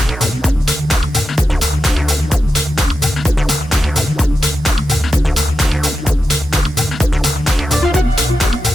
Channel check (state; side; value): normal; both; correlation 0.88